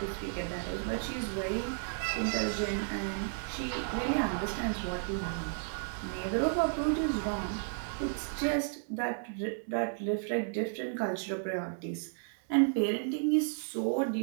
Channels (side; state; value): left; silent; 56 dB below the other